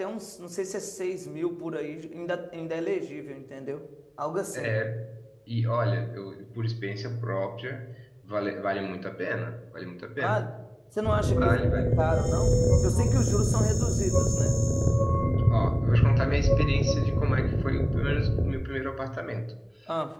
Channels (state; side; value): identical; both; correlation 1.00